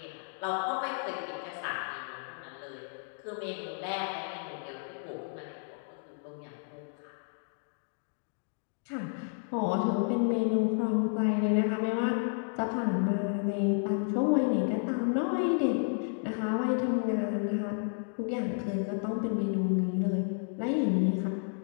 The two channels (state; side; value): silent; right; 57 dB below the other